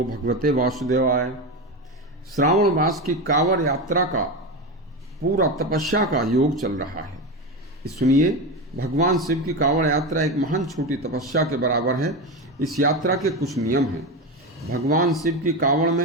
भगवते वासुदेवाय। श्रावण मास की कांवड़ यात्रा का पूरा तपस्या का योग चल रहा है। सुनिए, भगवान शिव की कांवड़ यात्रा एक महान छोटी तपस्या के बराबर है। इस यात्रा के कुछ नियम हैं। भगवान शिव की कांवड़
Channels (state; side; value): normal; both; correlation 0.19